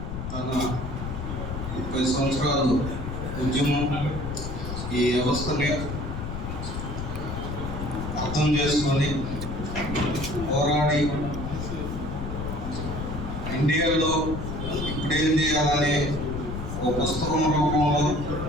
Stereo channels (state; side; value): noise; left; rumble, 5 dB below the sound